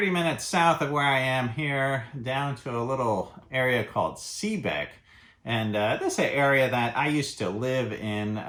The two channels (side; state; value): both; identical; correlation 1.00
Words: minutes south of where I am here down to a little area called Seebeck. And this is an area that I used to live in